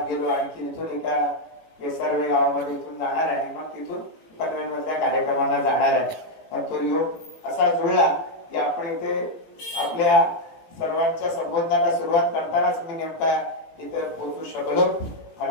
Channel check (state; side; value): late; right; 18 ms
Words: गेलो, आणखी इथून एका केसरवे गावामध्ये इथून जाणार आहे, आणि मग तिथून पनवेलमधल्या कार्यक्रमांना जाणार आहे. तो योग असा जुळला की आपण इथे आपल्या सर्वांच्या संबोधनाला सुरुवात करतानाच मी नेमका इथं पोहोचू शकलो.